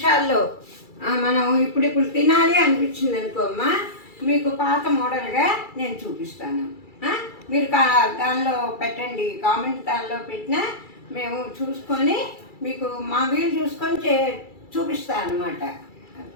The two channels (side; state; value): right; late; 2.3 ms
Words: మనం ఇప్పుడు తినాలి అనిపించింది అనుకోమ్మా, మీకు పాత మోడల్గా నేను చూపిస్తాను. మీరు దానిలో పెట్టండి, కామెంట్ దానిలో పెట్టినా మేము చూసుకొని మీకు మా వీలు చూసుకొని చూపిస్తాను అనమాట.